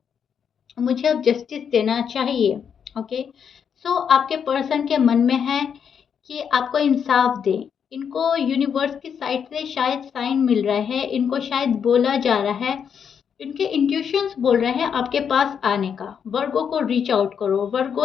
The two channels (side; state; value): right; quieter; 7.4 dB